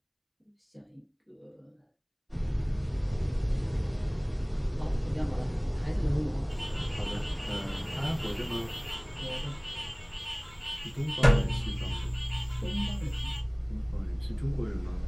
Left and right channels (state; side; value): identical; both; correlation 1.00